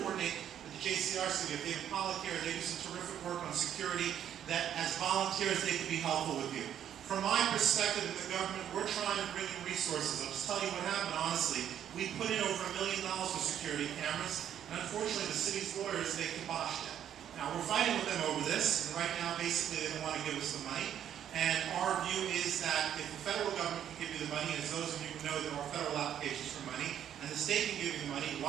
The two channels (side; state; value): left; quieter; 9.9 dB